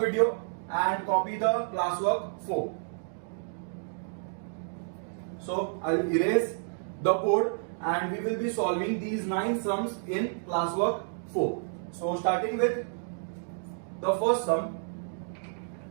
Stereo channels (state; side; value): silent; left; digital silence